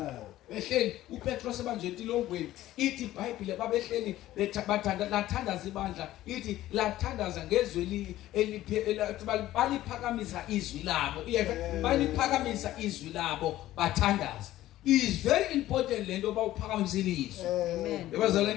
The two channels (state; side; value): quieter; right; 14.7 dB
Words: behleli uPetros ebanje entilongweni ithi iBhayibhile babehleli bathandaza ibandla ithi lathandaza ngezwi baliphakamisa izwi labo baliphakamisa izwi labo bathandaza. It is very important lento bawuphakamisile izwi. Amen.